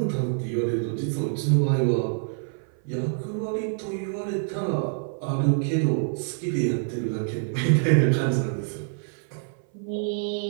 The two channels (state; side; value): silent; left; 58 dB below the other